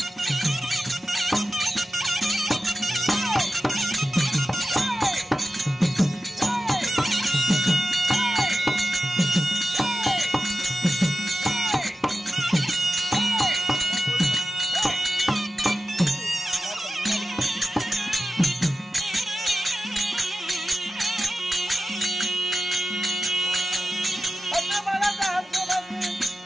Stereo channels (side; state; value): both; normal; correlation 0.93